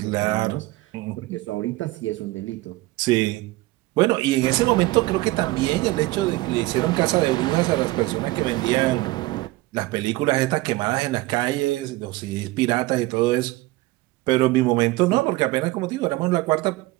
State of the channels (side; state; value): left; quieter; 19.5 dB